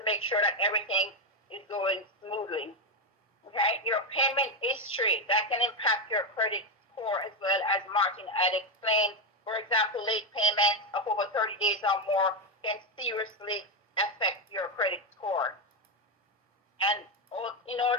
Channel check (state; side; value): normal; both; correlation 0.08